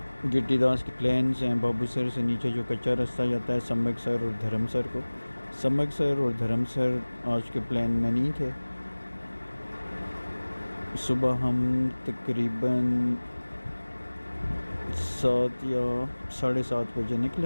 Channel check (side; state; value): both; inverted; correlation -1.00